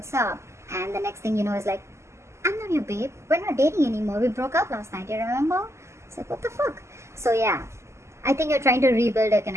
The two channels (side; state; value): left; late; 0.13 ms